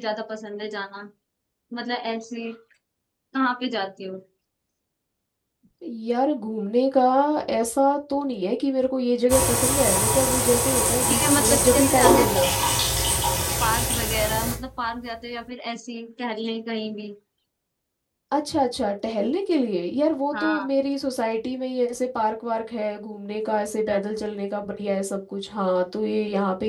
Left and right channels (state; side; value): identical; both; correlation 1.00